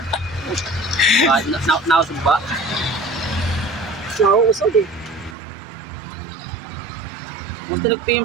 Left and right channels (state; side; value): drops out; left; at 5.4 s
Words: Nausog ba? Nauusog eh. Gusto nag-PM